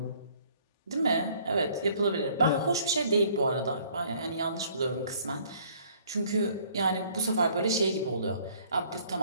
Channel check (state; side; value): inverted; both; correlation -0.59